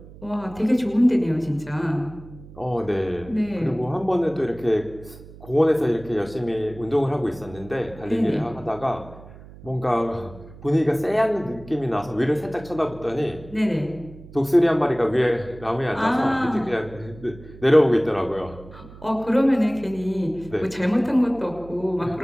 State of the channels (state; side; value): noise; right; hum, 18 dB below the sound